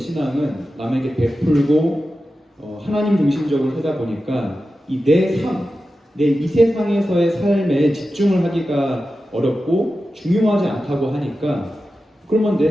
남에게 베풀고 하나님 중심적으로 하다 보니까 이 내 삶, 내 이 세상에서의 삶에 집중을 하기가 어렵고 중요하지 않다고 하니까 그러면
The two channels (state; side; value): normal; both; correlation 0.92